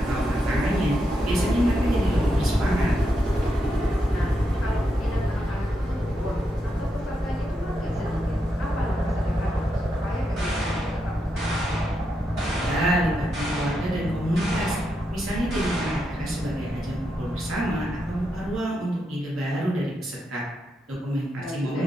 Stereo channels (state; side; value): normal; both; correlation 0.84